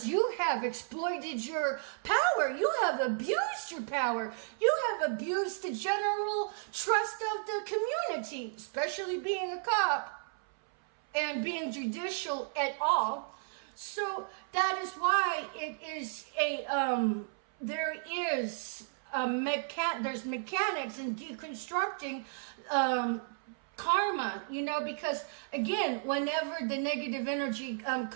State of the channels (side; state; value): left; silent; 56 dB below the other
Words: you have exploited your power. You have abused your power. You have abused the general trust of the community, especially being a cop and being judicial at all. So that is why it is there's mechanics in deconstructing karma, because again, whenever the negative energy